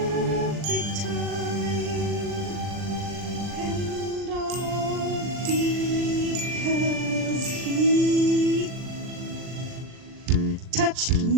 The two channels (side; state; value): left; late; 40 ms